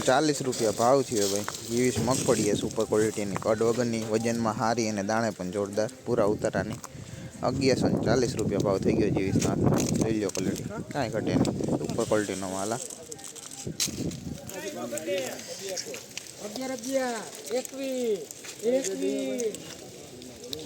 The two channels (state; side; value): identical; both; correlation 1.00